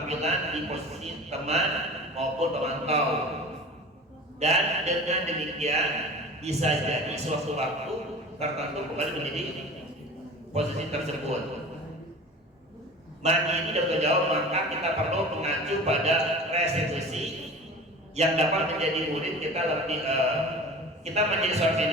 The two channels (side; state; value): both; normal; correlation 0.37